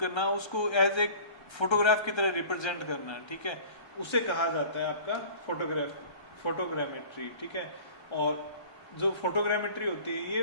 उसको एज ए फोटोग्राफ की तरह रिप्रेजेंट करना। ठीक है, उसे कहा जाता है आपका फोटोग्रामेट्री। ठीक है, और जो फोटोग्रामेट्री होती है,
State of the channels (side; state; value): right; late; 1.3 ms